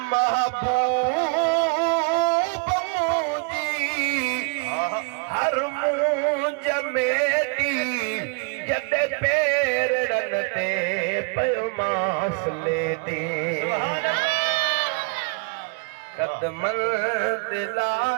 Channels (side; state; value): left; quieter; 36.1 dB